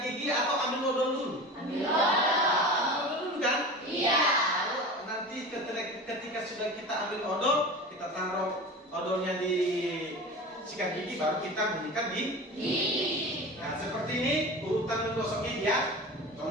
gigi atau ambil odol dulu? Ambil odol dulu kan? Iya. Lalu nanti ketika sudah kita ambil odol, kita taruh odolnya di sikat gigi, baru kita menyikat gigi. Nah, seperti ini urutan menggosok gigi ya.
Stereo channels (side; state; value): both; normal; correlation 0.32